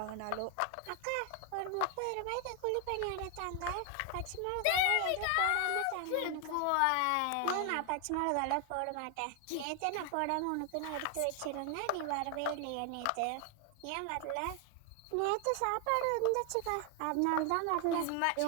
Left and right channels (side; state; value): both; different; correlation 0.00